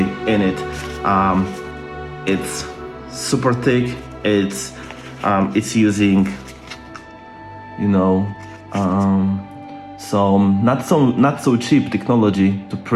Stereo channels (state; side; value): identical; both; correlation 1.00